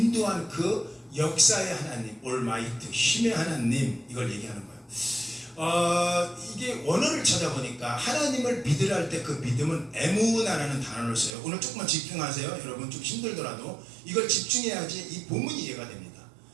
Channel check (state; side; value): drops out; left; at 11.4 s